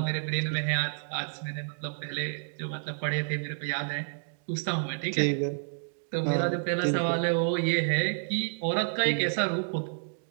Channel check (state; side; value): silent; left; digital silence